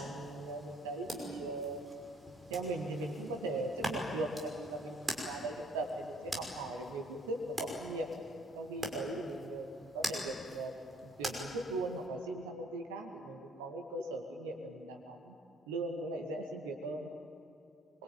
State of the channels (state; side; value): normal; both; correlation 0.60